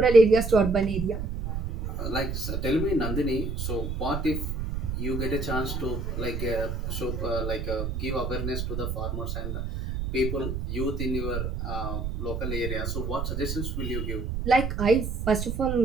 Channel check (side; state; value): right; noise; rumble, 3 dB below the sound